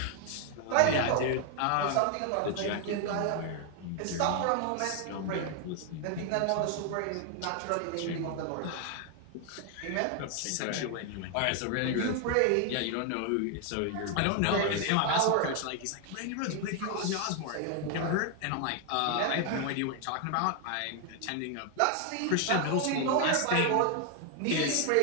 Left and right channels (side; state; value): both; different; correlation 0.00